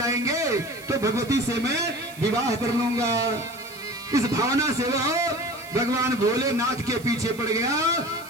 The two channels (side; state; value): right; noise; hiss, 19 dB below the sound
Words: तो भगवती से मैं विवाह कर लूंगा। इस भावना से वह भगवान भोलेनाथ के पीछे पड़ गया